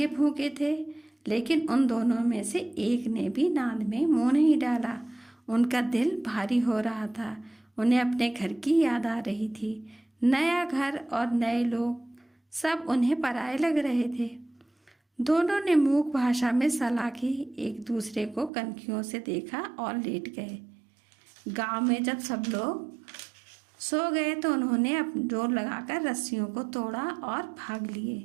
भूखे थे, लेकिन उन दोनों में से एक ने भी नाद में मुंह नहीं डाला। उनका दिल भारी हो रहा था। उन्हें अपने घर की याद आ रही थी। नया घर और नए लोग सब उन्हें पराये लग रहे थे। दोनों ने मूक भाषा में सलाह की, एक दूसरे को कनखियों से देखा और लेट गए। गांव में जब सब लोग सो गए तो उन्होंने जोर लगाकर रस्सियों को तोड़ा और भाग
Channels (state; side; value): drops out; left; at 18.5 s